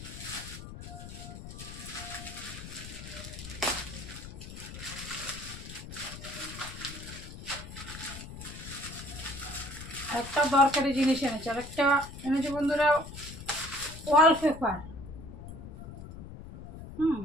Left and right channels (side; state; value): left; noise; rumble, 12 dB below the sound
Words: একটা দরকারি জিনিস এনেছে, আর একটা এনেছে বন্ধুরা ওয়ালপেপার।